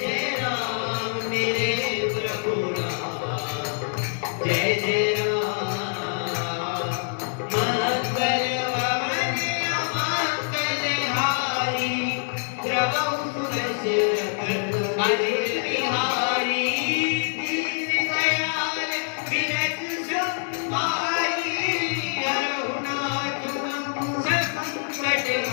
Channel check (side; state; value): right; silent; 56 dB below the other